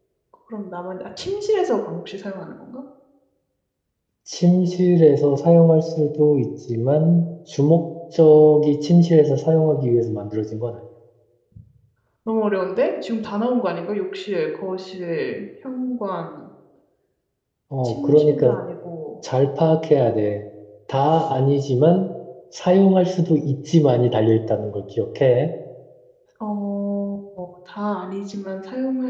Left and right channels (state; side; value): identical; both; correlation 1.00